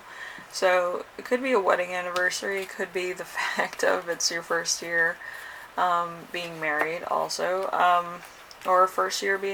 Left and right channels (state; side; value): identical; both; correlation 1.00